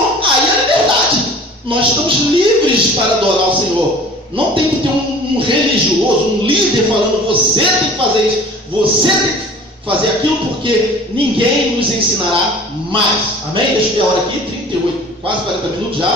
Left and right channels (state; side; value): normal; both; correlation 0.45